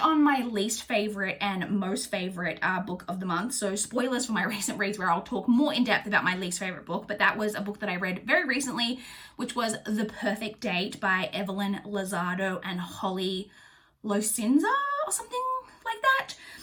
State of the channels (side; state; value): both; identical; correlation 1.00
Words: my least favorite and most favorite book of the month. So spoilers for my recent reads where I'll talk more in depth about my least favorite book, but that was a book that I read very recently, which was The Perfect Date by Evelyn Lozado and Holly Locinza or something like that.